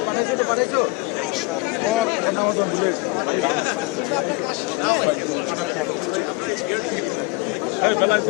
আসার পরই তিনি বেগম খালেদা জিয়া উপদেষ্টা তার কাছে ছুটে গিয়েছেন এবং তিনি তাকে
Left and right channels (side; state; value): right; quieter; 25.7 dB